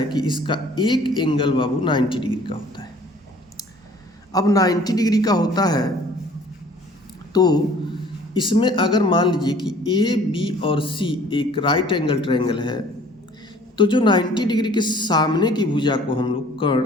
कि इसका एक एंगल बाबू 90 डिग्री का होता है। अब 90 डिग्री का होता है तो इसमें अगर मान लीजिए कि ए बी और सी एक राइट एंगल ट्रायंगल है तो जो 90 डिग्री के सामने की भुजा को हम लोग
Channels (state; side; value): normal; both; correlation 0.53